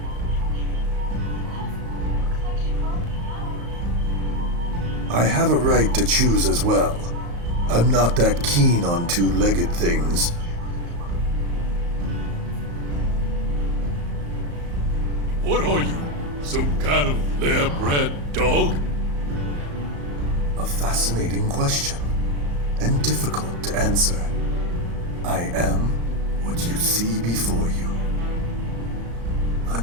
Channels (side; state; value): left; late; 35 ms